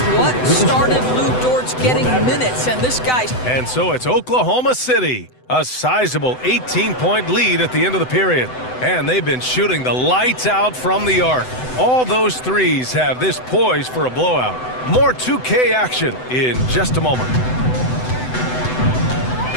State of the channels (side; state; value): right; late; 7.9 ms